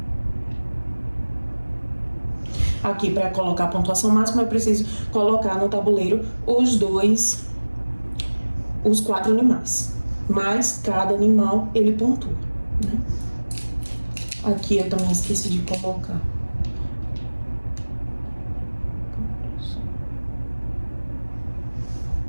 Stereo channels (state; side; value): inverted; both; correlation -1.00